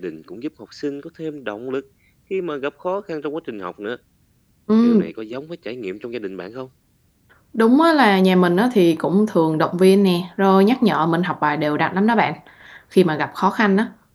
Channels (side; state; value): both; identical; correlation 1.00